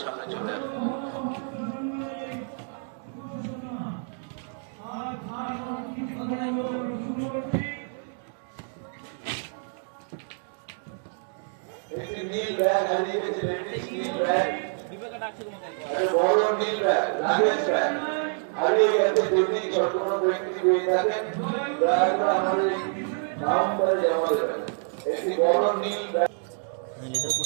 সামনে চলে আসবেন। নীল ব্যাগ হারিয়ে গেছে, লেডিস নীল ব্যাগ, বড় নীল ব্যাগ, লাগেজ ব্যাগ হারিয়ে গেছে। যদি ছোট কোনো ব্যক্তি পেয়ে থাকেন দয়া করে আমাদের কাউন্টারে জমা দেবেন। একটি বড় নীল ব্যাগ।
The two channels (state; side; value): silent; left; 60 dB below the other